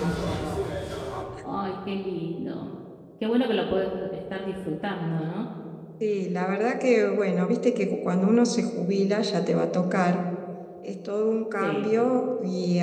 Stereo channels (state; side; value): identical; both; correlation 1.00